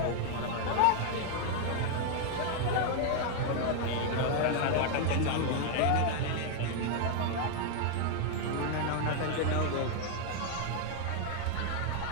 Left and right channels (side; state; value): both; different; correlation 0.01